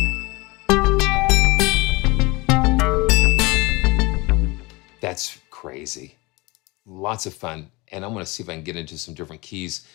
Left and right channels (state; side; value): quieter; right; 24.3 dB